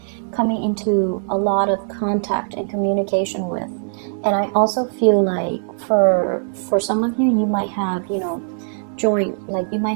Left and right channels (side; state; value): left; silent; digital silence